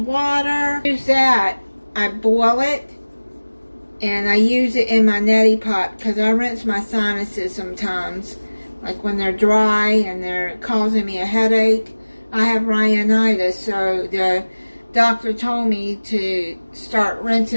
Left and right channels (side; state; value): both; inverted; correlation -1.00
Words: Use that. I boil it. And I use it in my neti pot because I rinse my sinuses sometimes. Like when they're dry and they're causing me a headache. I have rhinitis, so the doctor told me to start